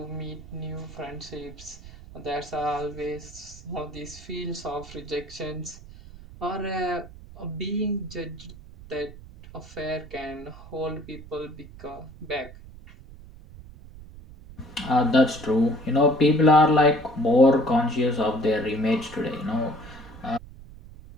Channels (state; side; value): noise; right; rumble, 18 dB below the sound